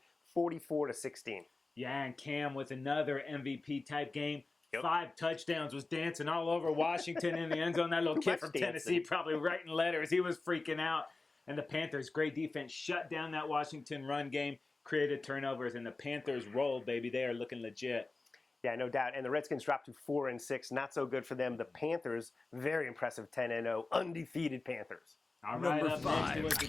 44-16. Yeah, and Cam with another MVP-type game. Yep. 5 touchdowns, was dancing all over Washington in the end zone. That little kid from Tennessee probably writing letters. He was freaking out. And the Panthers, great defense, shut down that Washington run game, created turnovers, and the Panthers rolled, baby. They are looking legit. Yeah, no doubt. And the Redskins dropped to 4-6. Not so good for them. The Panthers, very impressive, 10-0, undefeated Panthers. All right, up next was the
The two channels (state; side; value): quieter; right; 3.5 dB